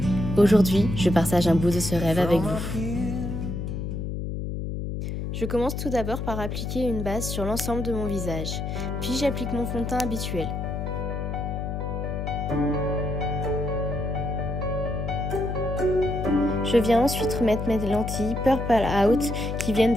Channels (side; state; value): left; noise; hum, 4 dB below the sound